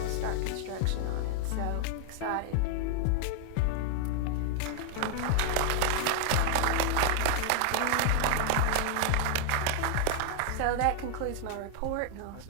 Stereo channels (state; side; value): different; both; correlation 0.00